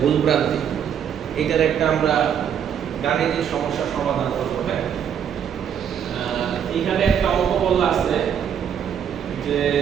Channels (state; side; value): quieter; left; 8.5 dB